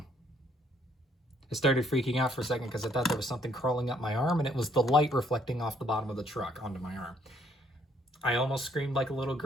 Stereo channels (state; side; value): normal; both; correlation 0.67